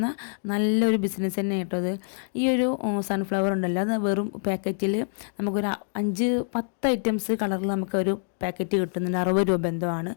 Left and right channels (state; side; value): silent; right; digital silence